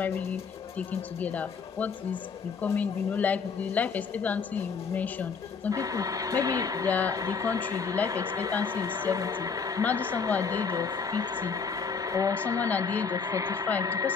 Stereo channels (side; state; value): right; quieter; 5.5 dB